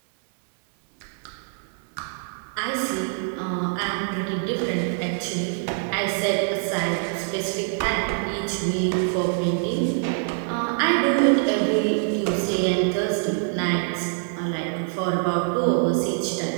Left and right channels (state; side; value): silent; left; 58 dB below the other